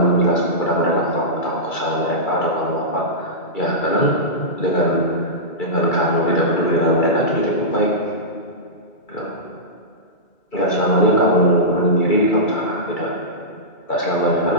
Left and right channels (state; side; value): late; right; 2.3 ms